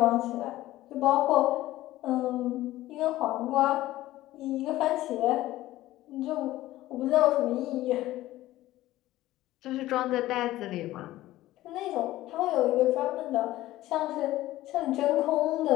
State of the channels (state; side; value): quieter; right; 15.9 dB